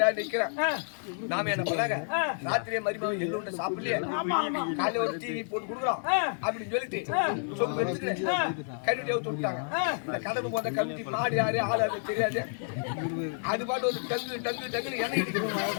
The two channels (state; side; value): silent; right; 58 dB below the other